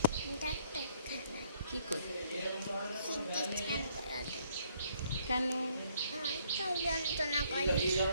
কি করতে? কেন?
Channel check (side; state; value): both; inverted; correlation -0.66